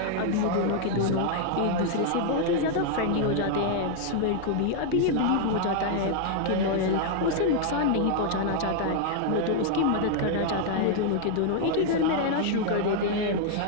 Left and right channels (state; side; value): different; both; correlation 0.00